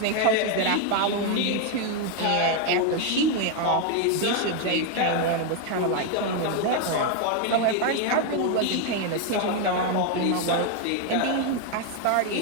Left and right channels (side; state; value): both; different; correlation 0.01